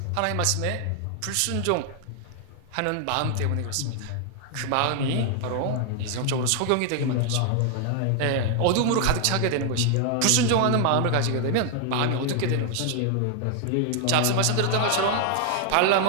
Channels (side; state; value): both; different; correlation 0.00